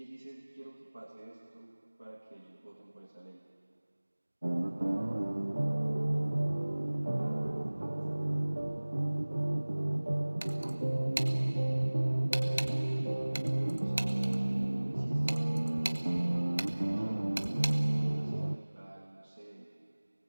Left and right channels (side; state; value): both; inverted; correlation -1.00